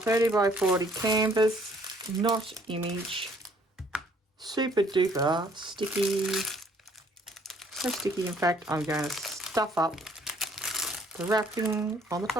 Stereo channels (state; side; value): normal; both; correlation 0.61